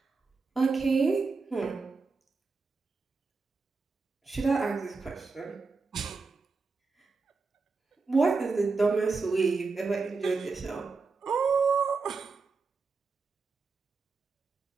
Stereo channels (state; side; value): quieter; left; 4.3 dB